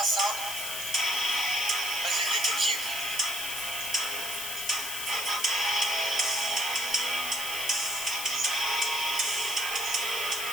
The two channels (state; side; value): noise; left; hiss, 4 dB below the sound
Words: ça. Vas-y, le détective.